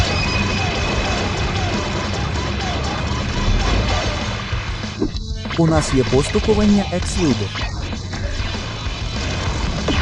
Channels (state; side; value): identical; both; correlation 1.00